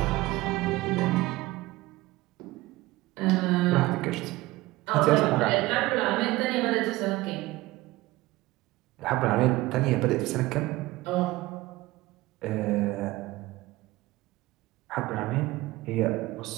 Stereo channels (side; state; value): left; quieter; 19.1 dB